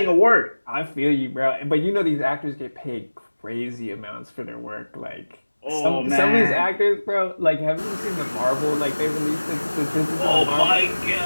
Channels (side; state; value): both; inverted; correlation -1.00